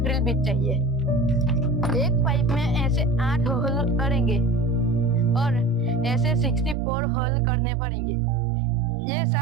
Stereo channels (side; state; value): left; drops out; at 6.8 s